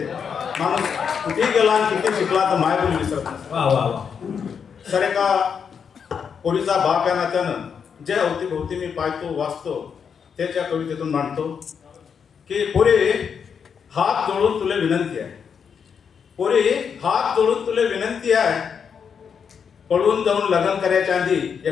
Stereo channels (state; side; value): quieter; right; 6.8 dB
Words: माणूस कुठे गेला आणि किती शिकला तर मायबोली विसरत नसते. वा वा वा. सर एका पोरीचा बाप या नात्यानं जे अवतीभोवती मी पाहतो वाचतो त्याच्या कवितेतून मांडतो की पोरी हात जोडून तुले विनंती आहे. पोरी हात जोडून तुले विनंती आहे, पळून जाऊन लग्न करायच्या आधी